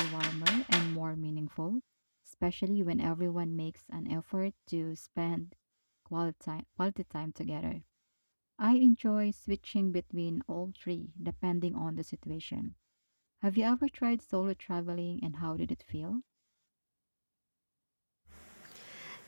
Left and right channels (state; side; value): inverted; both; correlation -1.00